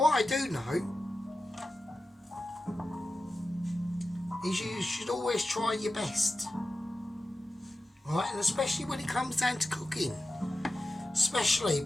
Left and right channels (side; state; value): both; normal; correlation 0.92